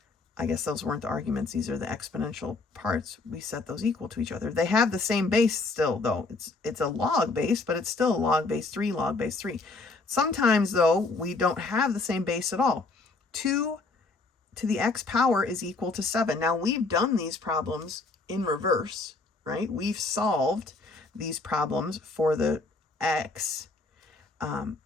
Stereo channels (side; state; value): right; quieter; 3.6 dB